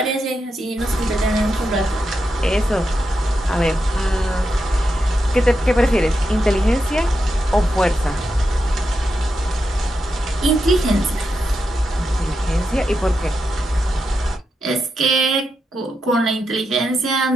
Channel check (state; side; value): normal; both; correlation 0.86